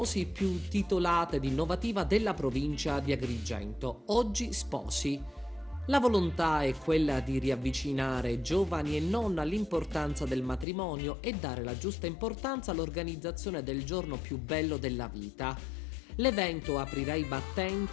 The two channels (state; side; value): drops out; right; at 10.7 s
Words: più titolata ed innovativa della provincia di Agrigento. Oggi Sposi. La volontà è quella di riavvicinare giovani e non all'importanza del matrimonio e dare la giusta importanza all'organizzazione del giorno più bello della vita. L'evento aprirà i